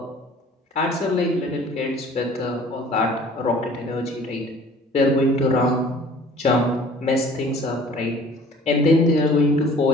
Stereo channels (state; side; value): normal; both; correlation 0.50